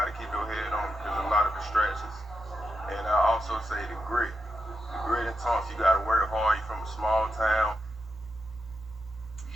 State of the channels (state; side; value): normal; both; correlation 0.86